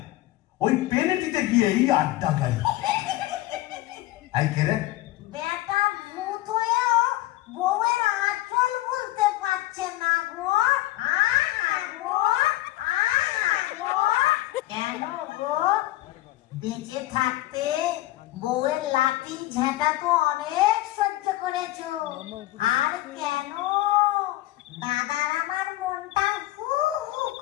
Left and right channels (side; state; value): right; quieter; 16.6 dB